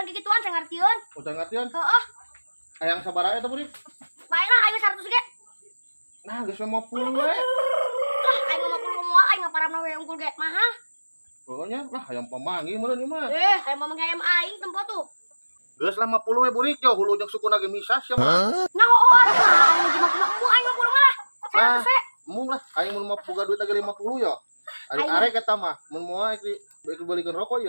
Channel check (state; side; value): inverted; both; correlation -1.00